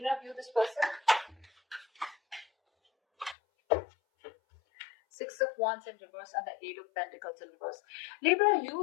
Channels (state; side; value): drops out; right; at 3.4 s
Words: view this person? Six of Wands in reverse and the Eight of Pentacles in reverse. Libra,